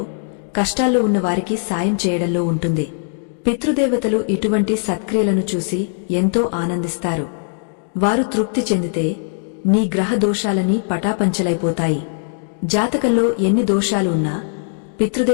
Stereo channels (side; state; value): right; silent; digital silence